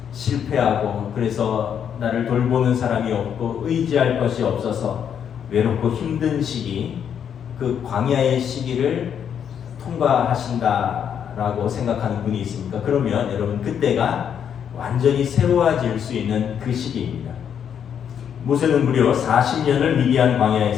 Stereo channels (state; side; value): quieter; right; 8.4 dB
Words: 실패하고 그래서 나를 돌보는 사람이 없고 의지할 것이 없어서 외롭고 힘든 시기, 그 광야의 시기를 통과하신다라고 생각하는 분이 있습니까? 그러면 여러분 그때가 완전히 새로워질 수 있는 그 시기입니다. 모세는 무려 40년을 미디안